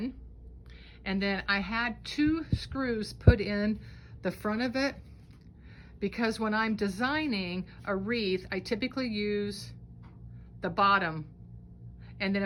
And then I had 2 screws put in the front of it, because when I'm designing a wreath, I typically use the bottom. And then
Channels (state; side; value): identical; both; correlation 1.00